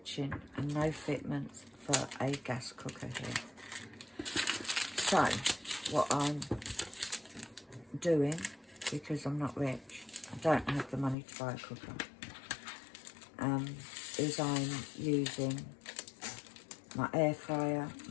and no fitments for a gas cooker here. So what I'm doing, because I'm not rich, I don't have the money to buy a cooker, is I'm using my air fryer,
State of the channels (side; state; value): right; drops out; at 11.2 s